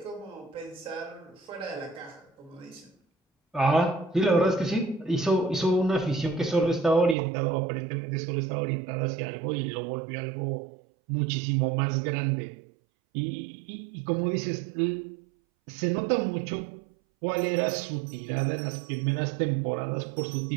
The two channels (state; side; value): drops out; left; at 7.2 s